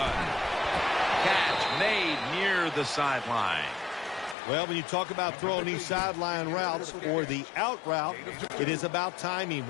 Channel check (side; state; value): right; drops out; at 4.4 s